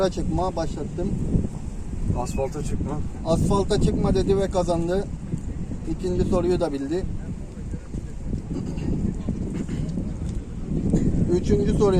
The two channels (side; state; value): both; identical; correlation 1.00